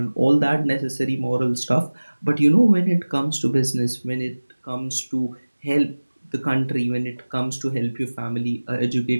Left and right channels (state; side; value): inverted; both; correlation -1.00